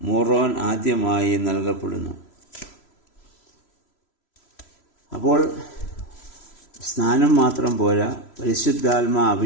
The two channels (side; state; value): right; late; 3.0 ms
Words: മൂറോൻ ആദ്യമായി നൽകപ്പെടുന്നു. അപ്പോൾ സ്നാനം മാത്രം പോരാ, പരിശുദ്ധാത്മാ